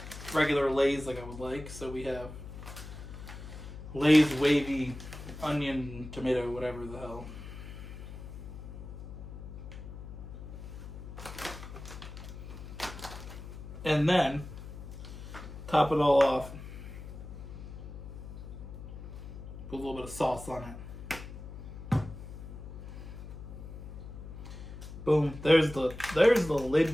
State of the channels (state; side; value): noise; left; hum, 11 dB below the sound